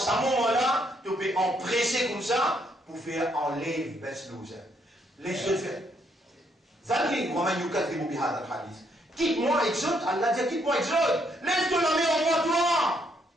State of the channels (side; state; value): both; normal; correlation 0.73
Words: moment-là, tu peux empresser comme ça, pour faire enlever best loser. Laisse-le faire. Zalri, Romain Yukat, qui m'a hadith. Quitte-moi, exode, Allah dit, quitte-moi, exode. Laisse-toi la main en moi, toi.